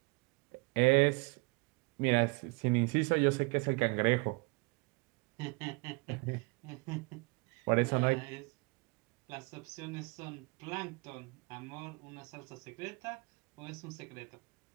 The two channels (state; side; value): quieter; left; 30.3 dB